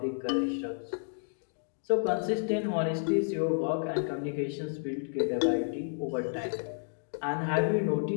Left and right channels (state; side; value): silent; right; digital silence